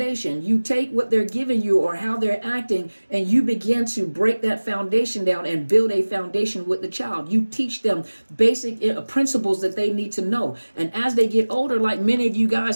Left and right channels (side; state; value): both; inverted; correlation -1.00